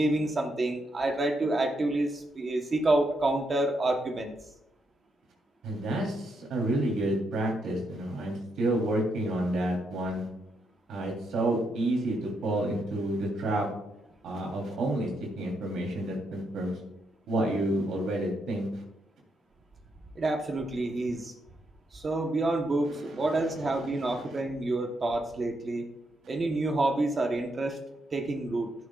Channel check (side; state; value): both; normal; correlation 0.80